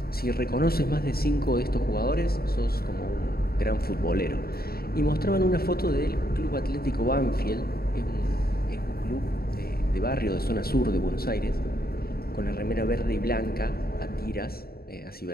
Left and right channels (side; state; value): right; late; 0.44 ms